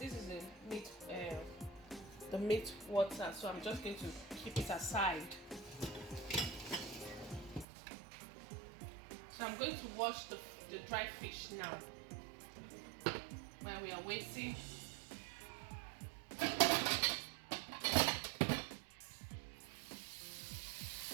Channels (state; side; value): drops out; left; at 7.7 s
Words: is the meat water. So I'm just going to keep it aside. So I'm going to wash the dry fish now while we are waiting.